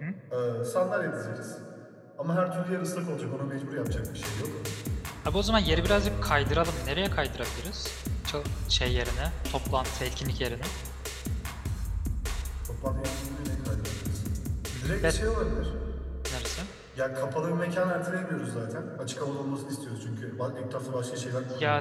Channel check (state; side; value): identical; both; correlation 1.00